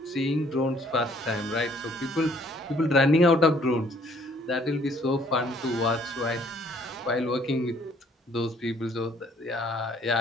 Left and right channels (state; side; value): normal; both; correlation 0.62